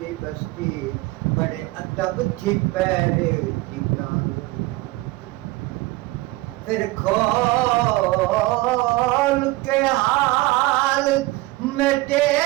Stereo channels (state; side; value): quieter; left; 19.9 dB